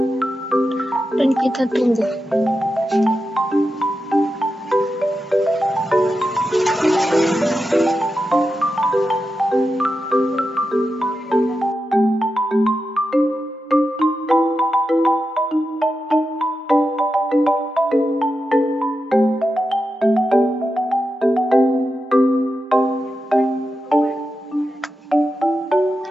dan kita tunggu.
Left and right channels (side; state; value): both; normal; correlation 0.89